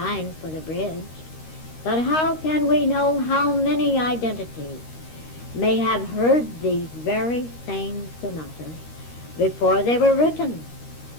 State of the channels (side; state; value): right; late; 13 ms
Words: for the bridge. But how can we know how many identities may have heard these very same sonatas before they were written?